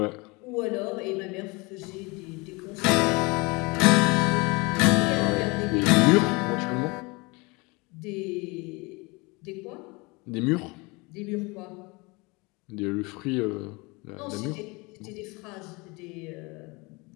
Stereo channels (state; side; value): quieter; right; 26.4 dB